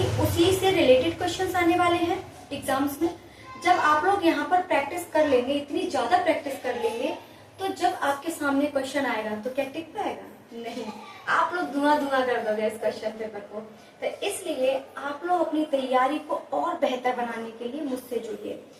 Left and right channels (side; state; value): both; identical; correlation 1.00